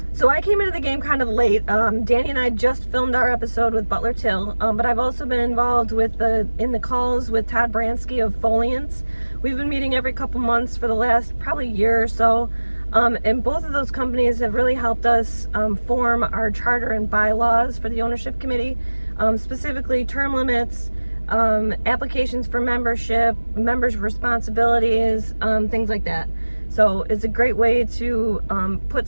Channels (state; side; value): inverted; both; correlation -1.00